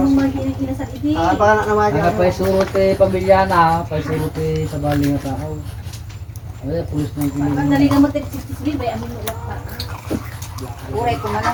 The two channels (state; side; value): identical; both; correlation 1.00